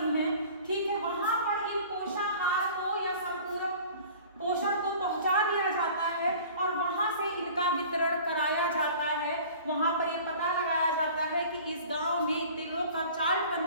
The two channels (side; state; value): both; inverted; correlation -0.45